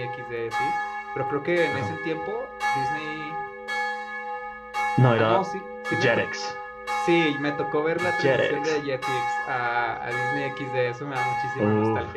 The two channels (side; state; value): both; identical; correlation 1.00